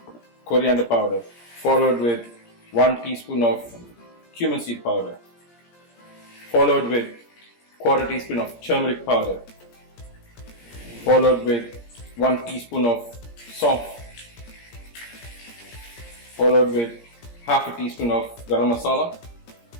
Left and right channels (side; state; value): right; late; 17 ms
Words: coriander powder, followed with 1 teaspoon of cumin seed powder, followed with 1/4 teaspoon of turmeric powder, followed with 1 teaspoon of salt, followed with 1/2 teaspoon of garam masala,